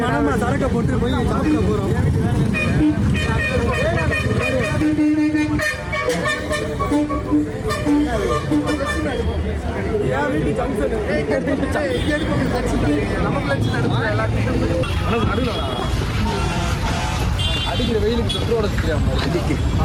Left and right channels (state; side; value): identical; both; correlation 1.00